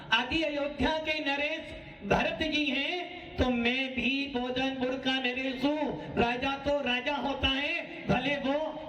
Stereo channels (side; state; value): both; identical; correlation 1.00